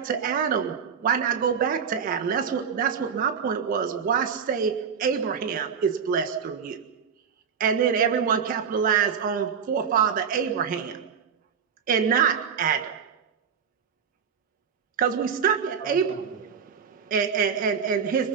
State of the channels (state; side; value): quieter; left; 6.9 dB